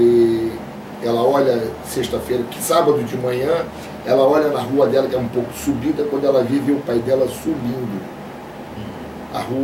ela olha, sexta-feira, que sábado de manhã, ela olha na rua dela, que é um pouco subida, quando ela vive o pai dela subindo a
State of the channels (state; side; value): identical; both; correlation 1.00